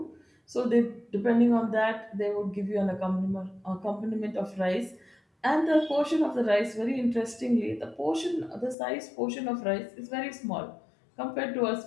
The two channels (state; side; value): drops out; right; at 8.8 s